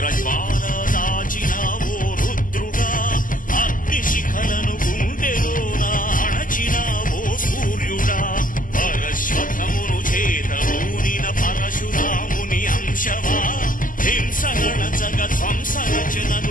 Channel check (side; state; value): right; late; 0.39 ms